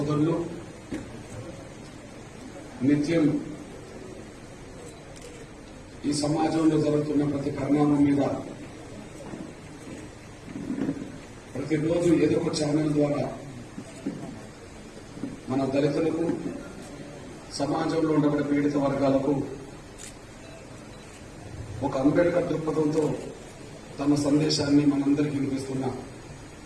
నిత్యం ఈ సమాజంలో జరుగుతున్న ప్రతి పరిణామం మీద ప్రతిరోజు ఏదో ఒక ఛానల్ ద్వారా మన దళితులకు, సమాజంలో ఉండబడే పీడిత వర్గాలకు ఒక అంబేద్కర్ దృక్పథంతో తమ సందేశాన్ని మనందరికీ వినిపిస్తున్న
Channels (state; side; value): identical; both; correlation 1.00